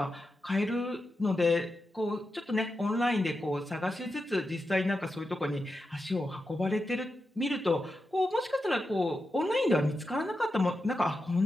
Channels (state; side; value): normal; both; correlation 0.89